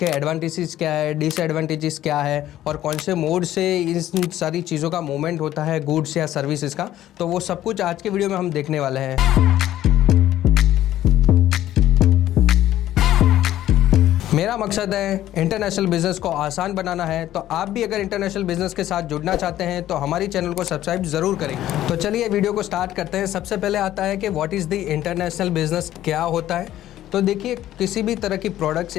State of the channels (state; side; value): quieter; right; 13.1 dB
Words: एडवांटेजेस क्या है, डिसएडवांटेजेस क्या है और कौन से मोड से इन सारी चीज़ों का मूवमेंट होता है, गुड्स या सर्विसेज का। तो वो सब कुछ आज के वीडियो में हम देखने वाले हैं। मेरा मकसद है इंटरनेशनल बिजनेस को आसान बनाना है, तो आप भी अगर इंटरनेशनल बिजनेस के साथ जुड़ना चाहते हैं तो हमारी चैनल को सब्सक्राइब ज़रूर करें। तो चलिए वीडियो को स्टार्ट करते हैं। सबसे पहले आता है कि what is the international business, क्या होता है। तो देखिए, किसी भी तरह की प्रोडक्ट्स